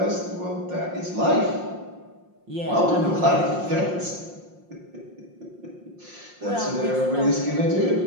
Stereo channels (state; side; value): late; left; 5.6 ms